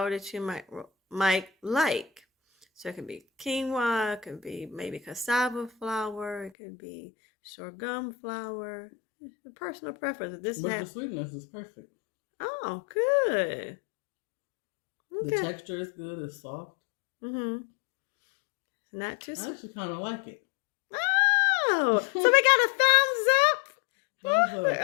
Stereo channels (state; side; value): drops out; right; at 6.5 s